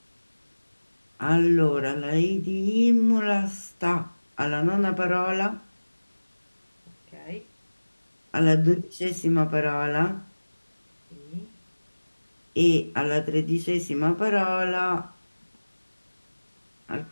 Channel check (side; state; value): both; inverted; correlation -1.00